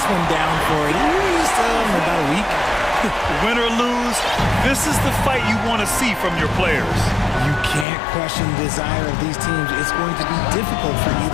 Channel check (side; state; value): right; drops out; at 7.9 s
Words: one down for at least about a week. Win or lose, this is the fight you want to see from your players. You can't question the desire of these teams. It's going to be difficult for